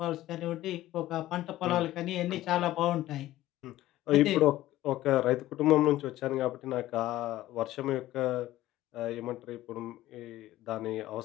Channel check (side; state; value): right; quieter; 15.4 dB